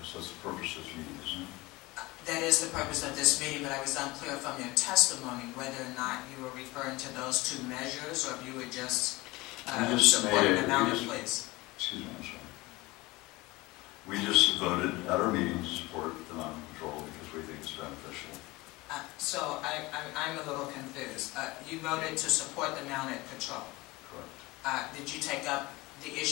that's the purpose of this meeting, isn't it? That is the purpose of this meeting, but I was unclear from your testimony whether or not you were referring to those 2 measures, or if you were just supporting the mounted police. Excuse me, I'm sorry. We just voted at our meeting to support the mounted patrol because we think it's beneficial. So I'm a little confused. You voted to support the mounted patrol. Correct. Did you take up the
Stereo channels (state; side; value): quieter; right; 21.5 dB